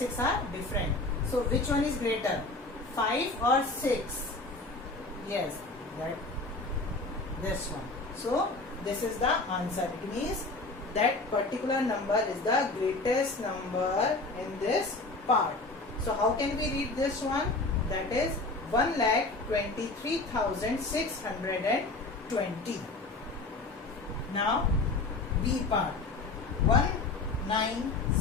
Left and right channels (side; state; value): right; quieter; 3.3 dB